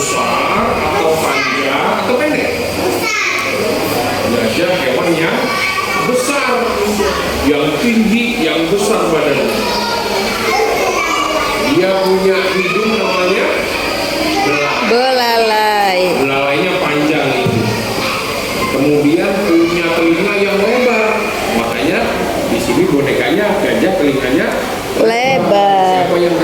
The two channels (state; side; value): identical; both; correlation 1.00